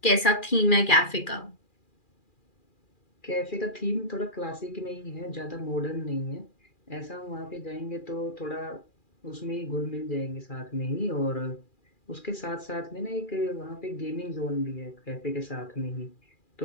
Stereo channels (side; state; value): right; late; 2.4 ms